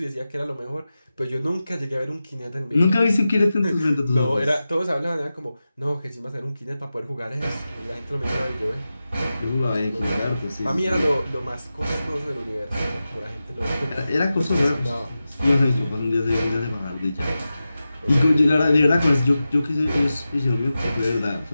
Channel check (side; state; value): both; inverted; correlation -0.93